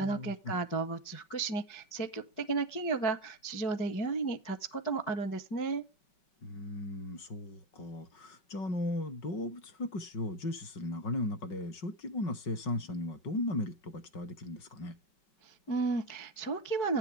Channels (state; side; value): late; right; 5.3 ms